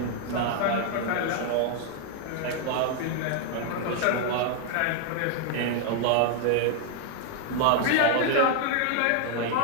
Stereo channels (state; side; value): different; both; correlation 0.00